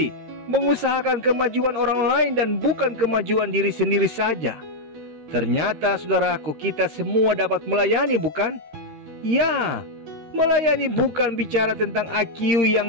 mengusahakan kemajuan orang lain dan bukan kemajuan diri sendiri saja. Ternyata, saudaraku, kita semua dapat melayani, bukan? Ya, melayani bukan bicara tentang IQ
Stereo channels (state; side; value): late; left; 13 ms